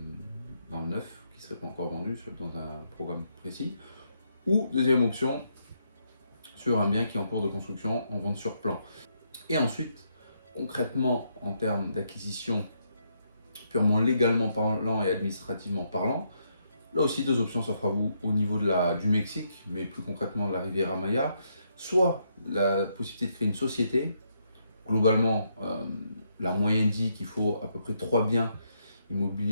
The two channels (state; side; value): inverted; both; correlation -0.76